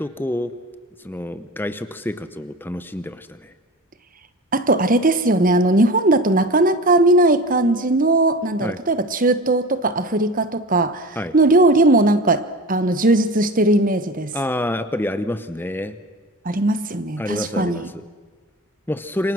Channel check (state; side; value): normal; both; correlation 0.33